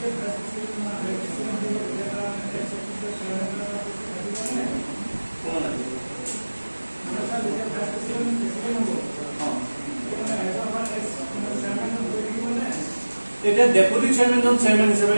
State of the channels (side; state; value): both; inverted; correlation -1.00